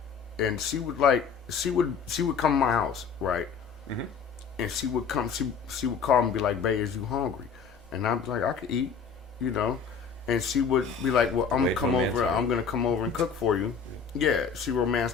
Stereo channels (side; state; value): right; quieter; 6.1 dB